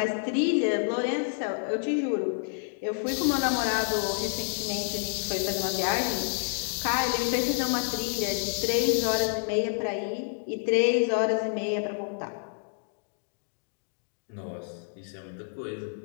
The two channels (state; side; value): silent; right; digital silence